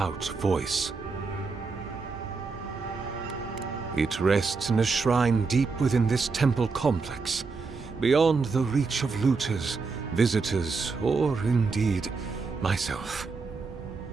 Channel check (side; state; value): left; quieter; 4.5 dB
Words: voice. It rests in a shrine deep within this temple complex, beyond the reach of looters, visitors, or indeed, myself.